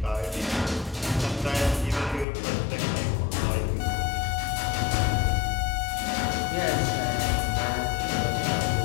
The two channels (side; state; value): right; drops out; at 2.2 s